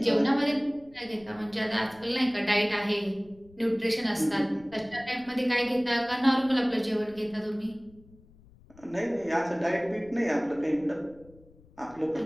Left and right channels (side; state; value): left; noise; rumble, 25 dB below the sound